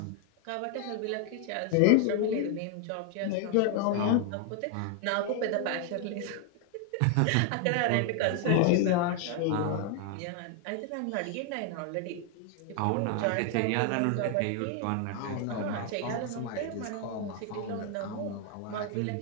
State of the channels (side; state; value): both; different; correlation 0.00